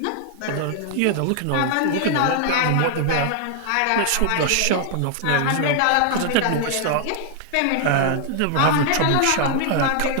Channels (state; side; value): different; both; correlation 0.00